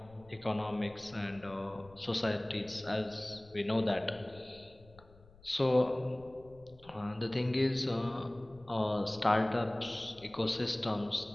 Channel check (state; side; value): noise; left; rumble, 24 dB below the sound